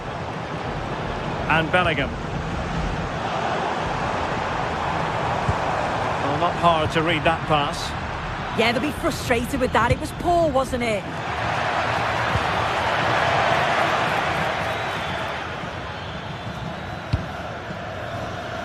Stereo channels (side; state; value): both; identical; correlation 1.00